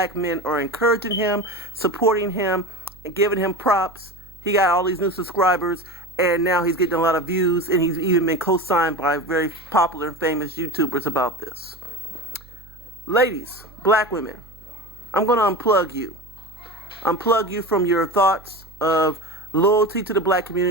men are encouraging him, supporting him, and giving him props. He got all these new subscribers, and now he's getting a lot of views, and he's even been co-signed by very popular and famous YouTubers about this. Ladies, black women, I'm going to unplug you. Unplug you from your thoughts of loyalty to the black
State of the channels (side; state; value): right; noise; hum, 22 dB below the sound